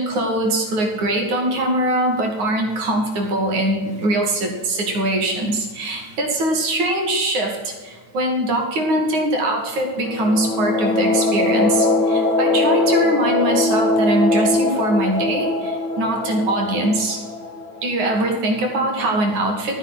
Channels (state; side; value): late; left; 9.5 ms